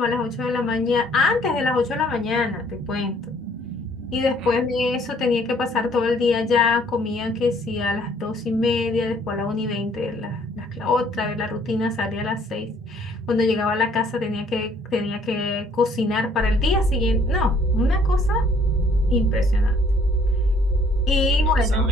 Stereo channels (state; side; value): normal; both; correlation 0.61